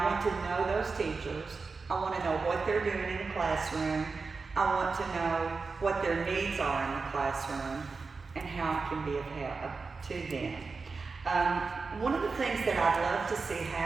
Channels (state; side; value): quieter; left; 4.4 dB